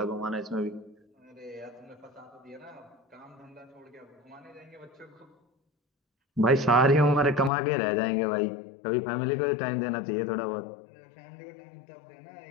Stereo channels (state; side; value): drops out; right; at 7.5 s